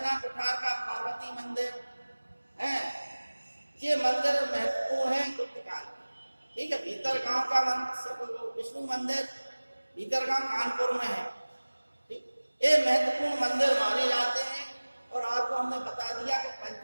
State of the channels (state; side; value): inverted; both; correlation -1.00